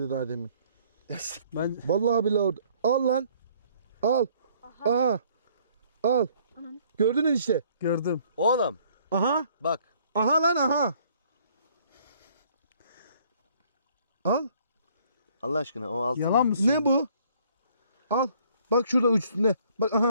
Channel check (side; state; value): both; inverted; correlation -0.61